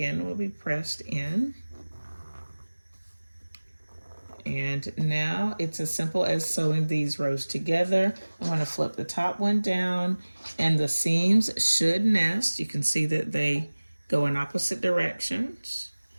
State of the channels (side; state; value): both; inverted; correlation -1.00